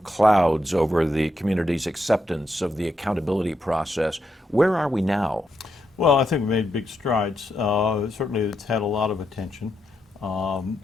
over the community's acceptance of the accountability process. Where are we now? Well, I think we made big strides. Certainly it's had a lot of attention.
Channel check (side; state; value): both; normal; correlation 0.82